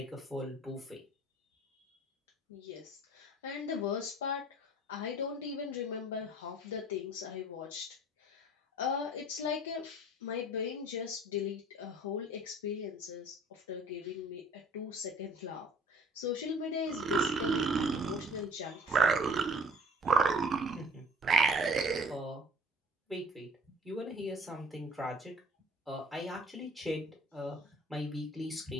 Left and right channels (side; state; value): both; normal; correlation 0.51